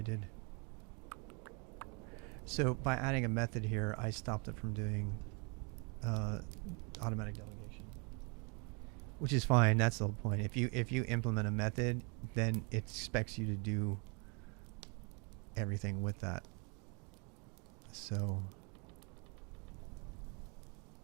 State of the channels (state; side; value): quieter; left; 33.8 dB